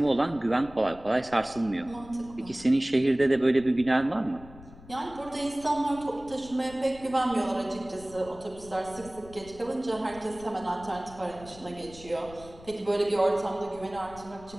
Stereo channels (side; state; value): left; noise; rumble, 19 dB below the sound